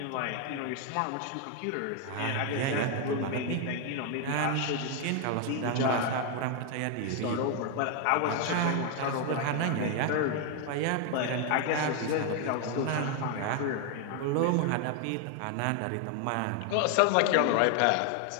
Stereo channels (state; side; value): different; both; correlation 0.01